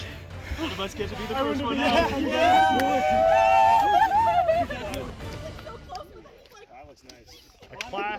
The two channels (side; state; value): both; identical; correlation 1.00